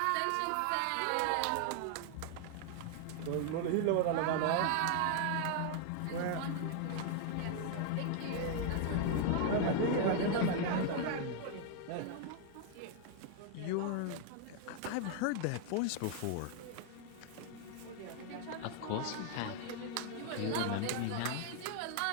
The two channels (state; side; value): different; both; correlation 0.00